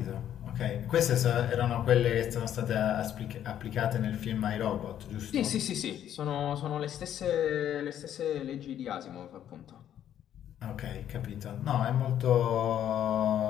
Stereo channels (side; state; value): right; quieter; 10.6 dB